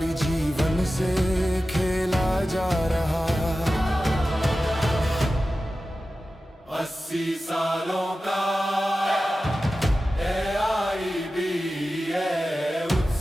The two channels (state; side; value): normal; both; correlation 0.94